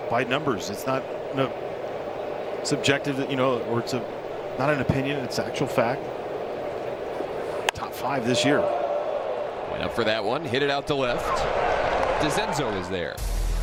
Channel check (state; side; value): identical; both; correlation 1.00